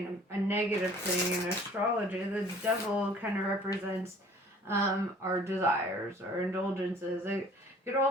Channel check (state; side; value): normal; both; correlation 0.52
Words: a negative thing in astrology. The devil kind of represents our desires, our indulgences. It could